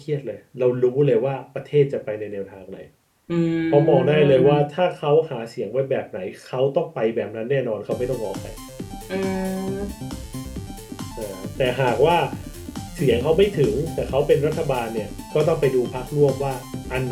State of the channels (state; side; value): identical; both; correlation 1.00